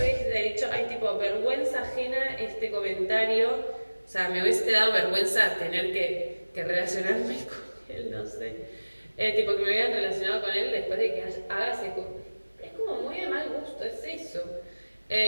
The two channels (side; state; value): both; inverted; correlation -1.00